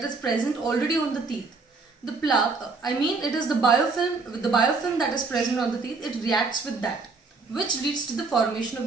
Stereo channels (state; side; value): quieter; left; 4.1 dB